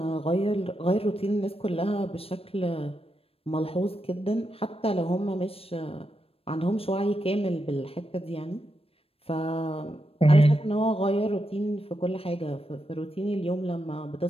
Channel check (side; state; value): right; late; 0.28 ms